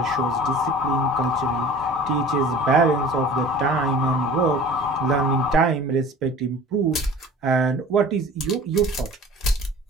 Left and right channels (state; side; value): normal; both; correlation 0.44